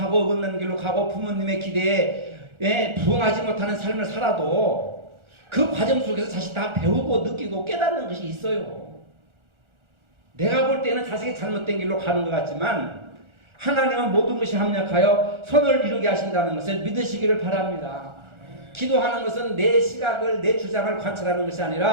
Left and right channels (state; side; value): late; left; 1.4 ms